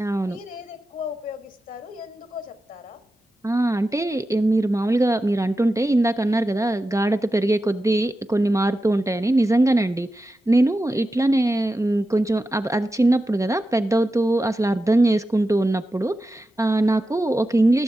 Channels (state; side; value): normal; both; correlation 0.91